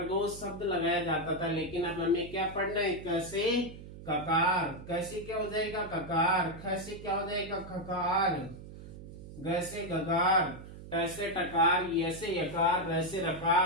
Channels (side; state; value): right; noise; hum, 14 dB below the sound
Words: शब्द लगाया जाता था। लेकिन अब हमें क्या पढ़ना है? क से ककार, कैसे क्या हो जाएगा? ककार। ख से क्या हो जाएगा? खकार, ग से गगार, टैसे टकार, यसे यकार, रैसे